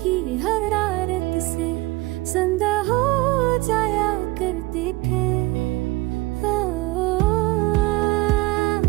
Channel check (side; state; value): left; quieter; 21.1 dB